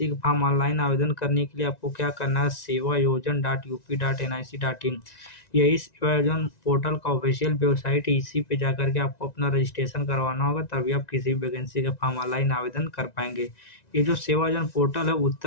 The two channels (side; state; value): right; late; 1.9 ms